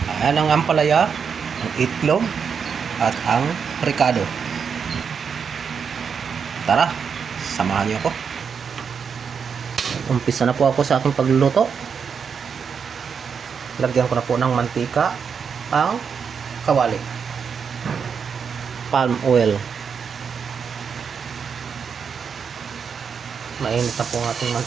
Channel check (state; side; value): quieter; left; 6.5 dB